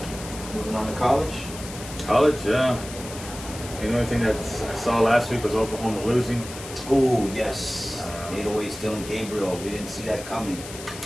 Moving on to college. College, yeah. The only thing that I saw last week was Oklahoma losing. Oh, yes. 808's Dylan Gabriel. We didn't see that coming.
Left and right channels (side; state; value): left; noise; hiss, 13 dB below the sound